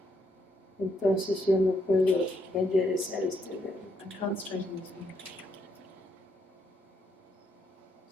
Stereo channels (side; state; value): both; normal; correlation 0.75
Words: Entonces yo no puedo enderezar este dedo. I can't straighten this finger.